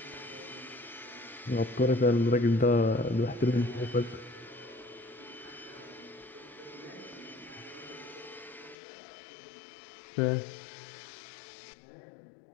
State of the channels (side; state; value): right; drops out; at 8.8 s